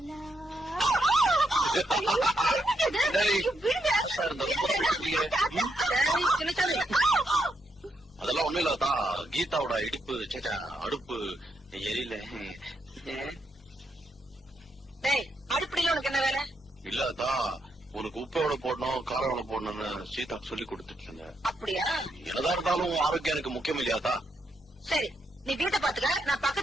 ஆத்தா இருந்தா ரொம்ப தான் அழுத்துக்கிறியே. டேய் சின்னசாமி, அதெல்லாம் ஒண்ணும் இல்லாதா, கீதாவோட இடுப்பு சேச்சா அடுப்பு எரியல. டேய் அடுப்படியில உனக்கு என்ன வேலை? இல்லாதா, உனக்கு உப்பு எவ்வளவு போடணும் காரம் எவ்வளவு போடணும்னு சீதாக்கு சொல்லி கொடுத்துட்டு இருந்தேன். அப்படியா? என்னதான் இருந்தாலும் உன் ஆரோக்கியம் எனக்கு முக்கியம் இல்லையாத்தா? சரி, நீ வீட்டை பாத்துக்க, நான்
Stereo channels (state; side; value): normal; both; correlation 0.80